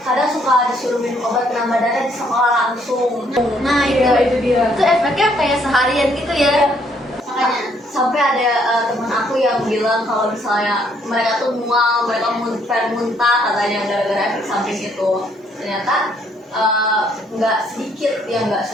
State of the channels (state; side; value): normal; both; correlation 0.68